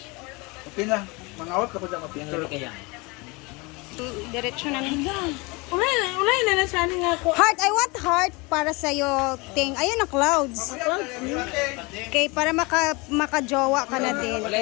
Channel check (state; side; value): quieter; right; 26.6 dB